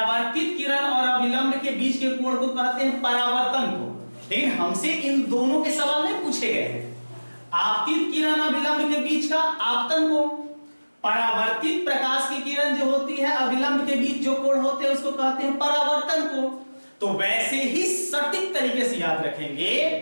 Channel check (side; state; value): both; inverted; correlation -1.00